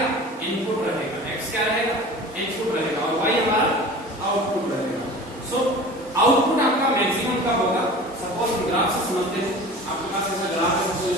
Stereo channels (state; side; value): normal; both; correlation 0.39